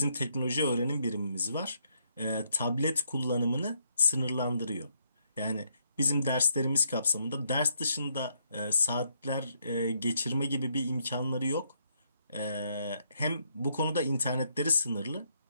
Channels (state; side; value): inverted; both; correlation -0.73